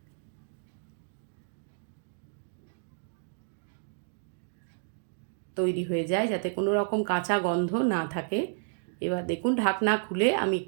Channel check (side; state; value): left; silent; digital silence